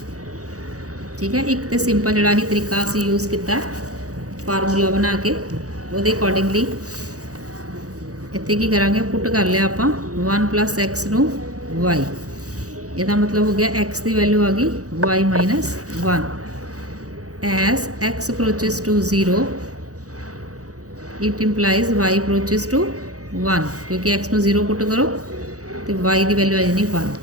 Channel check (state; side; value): late; left; 0.66 ms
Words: ठीक है। एक तो सिंपल जोड़ा ही तरीका असी यूज़ किया फार्मूला बना के वो अकॉर्डिंगली इतने की करांगे पुट कर लिया आप 1 प्लस एक्स नू वाई। यदा मतलब हो गया एक्स की वैल्यू आ गई y minus 1 as x approaches to 0 it implies y approaches to 1, क्योंकि एक्स नू 0 पुट करो तो वाई की वैल्यू आ जानी